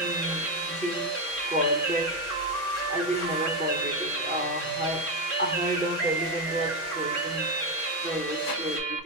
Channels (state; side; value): late; right; 6.1 ms